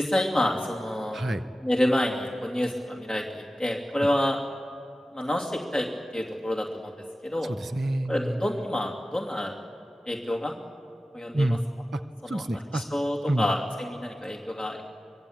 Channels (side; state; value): both; normal; correlation 0.95